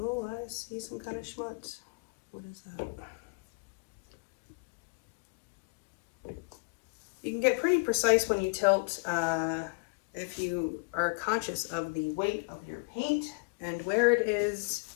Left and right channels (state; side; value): quieter; right; 33.4 dB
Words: I see some kind of schmutz. What is that? You can get pretty precise when you tilt if you are conscious of the weight of your paint and where it is.